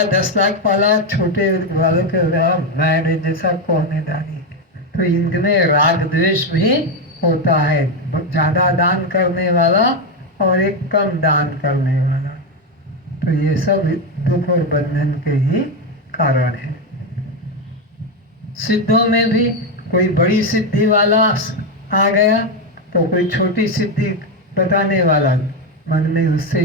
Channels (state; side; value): normal; both; correlation 0.08